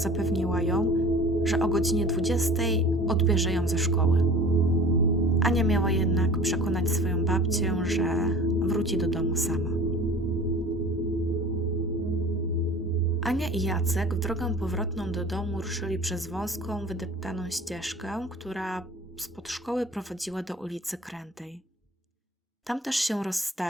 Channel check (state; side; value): normal; both; correlation 0.43